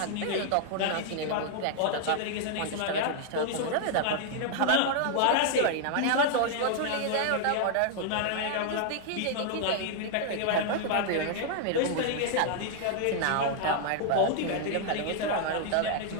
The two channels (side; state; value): both; different; correlation 0.00